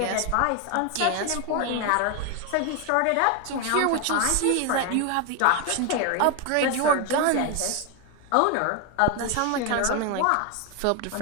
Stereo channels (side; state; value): both; different; correlation 0.01